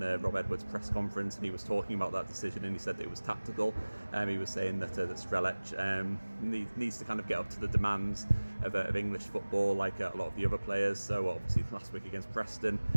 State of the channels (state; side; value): inverted; both; correlation -1.00